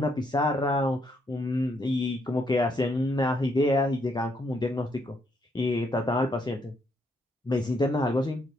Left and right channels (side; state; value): both; normal; correlation 0.74